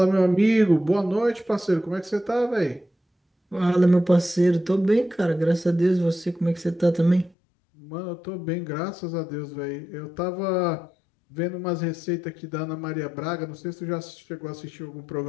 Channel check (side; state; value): right; drops out; at 7.4 s